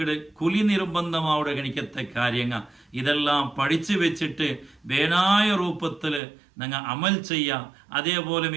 കുലി നിർബന്ധമാവിടെ ഗണിക്കത്തെ കാര്യങ്ങൾ ഇതെല്ലാം പഠിച്ചു വെച്ചിട്ട് വേനായ രൂപത്തില് ഞങ്ങൾ അമൽ ചെയ്യാം. അതേപോലെ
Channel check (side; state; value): left; drops out; at 6.2 s